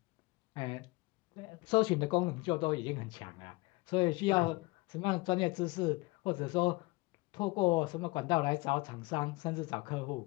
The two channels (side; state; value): right; quieter; 23.8 dB